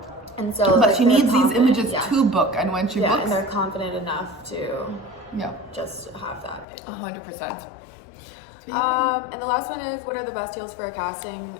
And so, but like, she needs these images yeah. to book, and when she books, and they're confident enough to just have that pick. 100%. And the last one is, what are the best heels for a casting?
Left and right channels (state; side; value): drops out; right; at 6.7 s